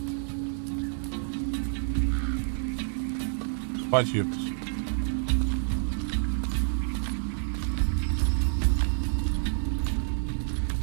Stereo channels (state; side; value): silent; left; 59 dB below the other